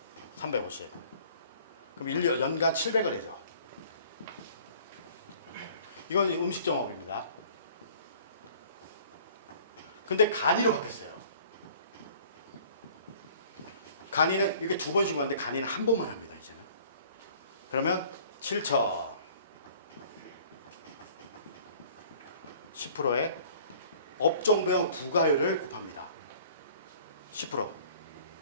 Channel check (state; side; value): inverted; both; correlation -0.51